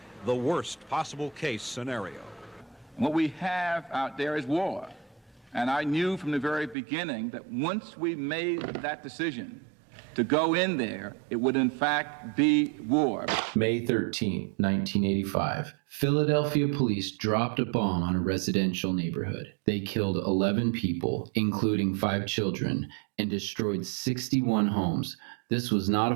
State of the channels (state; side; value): drops out; left; at 6.8 s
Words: the worst possible case scenario. What we have out there is war. And I knew from the very beginning that once we made that decision to go in there, it would in fact be war. May 13, 1985. Philadelphia police dropped a bomb on a residential neighborhood. They killed 11 people, including 5 children, and destroyed 61 homes. This was not a